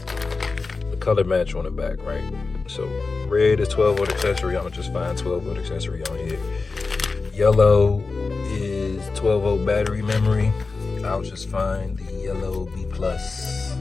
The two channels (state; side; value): quieter; right; 4.1 dB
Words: the color match on the back, right? So red is 12-volt accessory. I'm gonna just find 12-volt accessory on here. Yellow is 12-volt battery memory. I'll just find the yellow B+